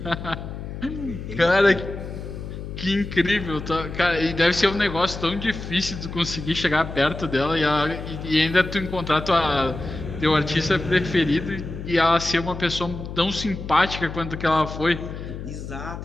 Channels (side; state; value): left; noise; hum, 9 dB below the sound